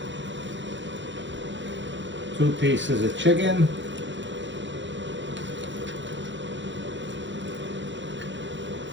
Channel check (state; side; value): late; left; 0.54 ms